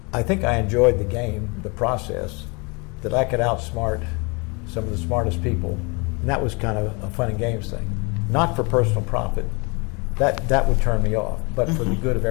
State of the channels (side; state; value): right; quieter; 29.9 dB